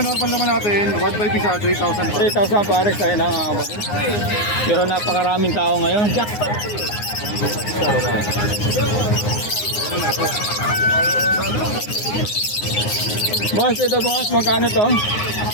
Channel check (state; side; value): late; right; 9.7 ms